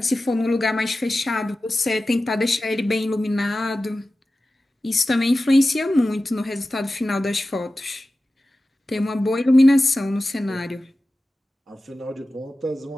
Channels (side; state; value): both; normal; correlation 0.95